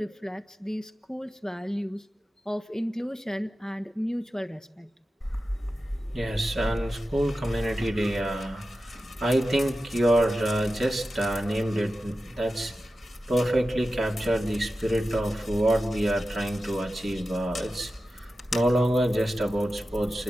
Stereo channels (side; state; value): both; normal; correlation 0.93